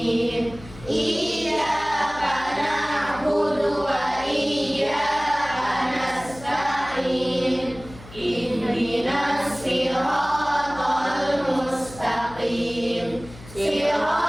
Iyyaka na'budu wa iyyaka nasta'in. Ihdinas siratal mustaqim.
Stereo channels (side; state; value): left; noise; hum, 18 dB below the sound